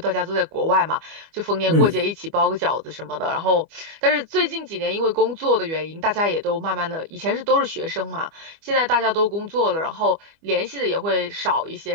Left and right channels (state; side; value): late; left; 25 ms